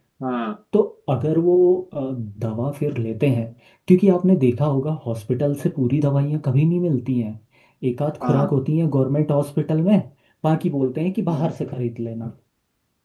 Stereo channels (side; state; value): both; identical; correlation 1.00